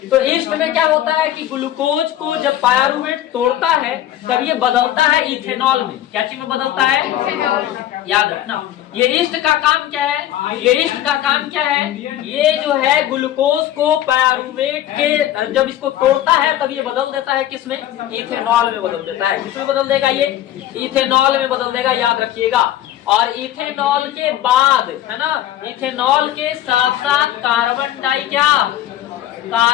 तो ईस्ट में क्या होता है कि ग्लूकोज को जब पायरुवेट तोड़ता है तब ये बदलता है इथेनॉल में। क्या चीज में बदलता है, याद रखना। ये ईस्ट का काम क्या है, ये ईस्ट का काम क्या है, ये जो है ग्लूकोज को पायरुवेट के जब इसको तोड़ता है तब ये बदल देता है किसमें, इथेनॉल में बदल देता है। किसमें बदल देगा, ये इथेनॉल में बदल देगा, याद रखिएगा। और इथेनॉल के बाद, है ना, इथेनॉल के साथ साथ कार्बन डाई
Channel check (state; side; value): quieter; right; 12.5 dB